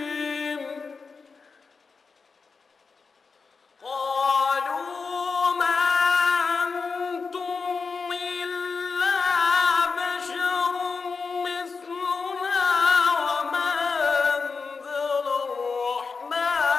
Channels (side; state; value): right; quieter; 4.8 dB